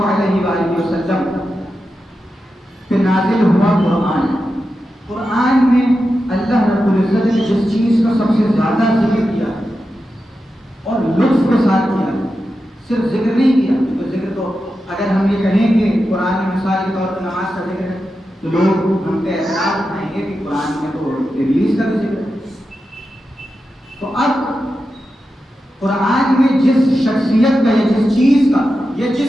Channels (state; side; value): normal; both; correlation 0.90